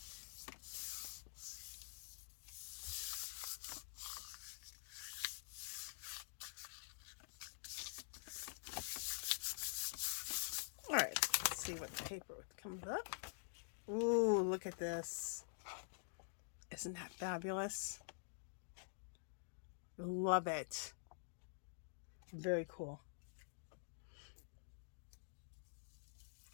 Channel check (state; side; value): silent; right; digital silence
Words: All right, let's see what the paper comes up. Ooh, look at this. Isn't that fabulous? Love it. Very cool.